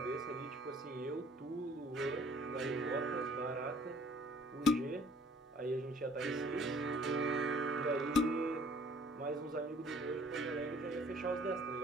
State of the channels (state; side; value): normal; both; correlation 0.56